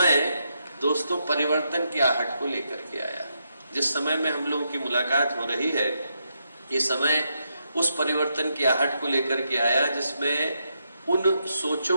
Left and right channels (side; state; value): both; inverted; correlation -0.81